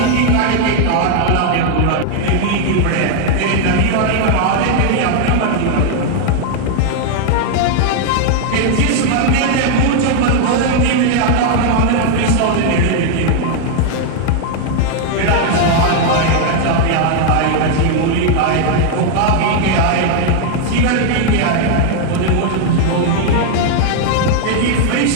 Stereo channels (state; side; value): different; both; correlation 0.00